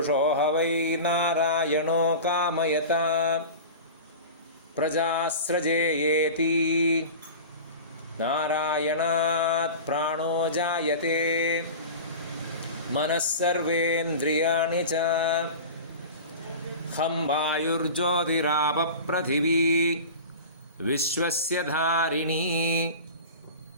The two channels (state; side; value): inverted; both; correlation -0.33